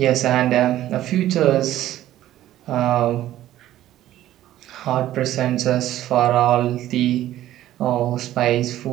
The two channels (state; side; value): quieter; left; 13.5 dB